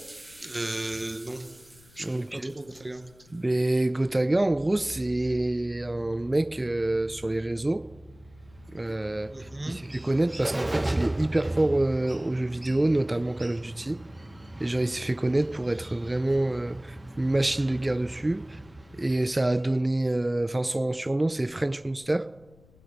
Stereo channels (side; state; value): left; noise; rumble, 27 dB below the sound